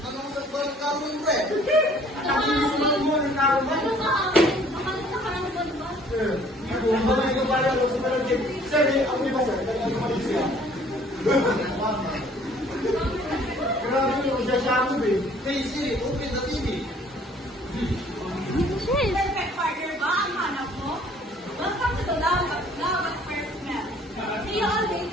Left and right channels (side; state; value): both; normal; correlation 0.56